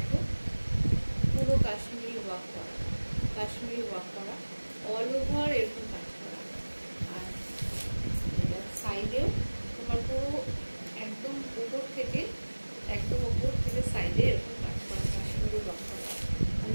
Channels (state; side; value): inverted; both; correlation -1.00